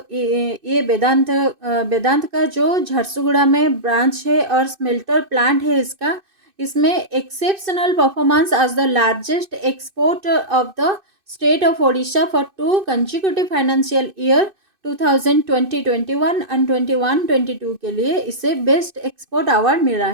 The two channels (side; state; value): left; late; 2.6 ms